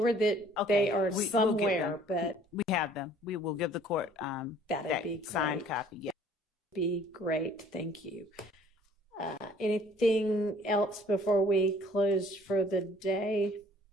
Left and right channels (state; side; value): normal; both; correlation 0.55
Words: that they are we'll get somewhere, them. but we have them. We will give the court that be signed great. copy. Yeah. Be great. Thank you. Anything else before we close for the day?